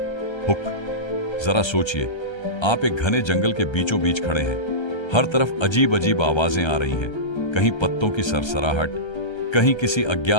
हुक। जरा सोचिए, आप एक घने जंगल के बीचों बीच खड़े हैं। हर तरफ अजीब अजीब आवाजें आ रही हैं, कहीं पत्तों की सरसराहट, कहीं किसी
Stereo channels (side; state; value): right; late; 1.3 ms